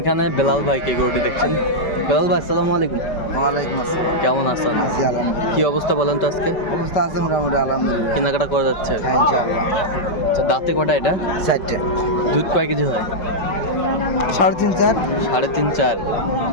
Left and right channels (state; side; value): late; right; 5.2 ms